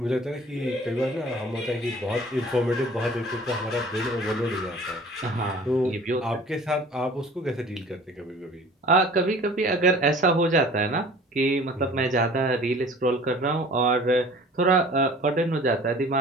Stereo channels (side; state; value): both; normal; correlation 0.47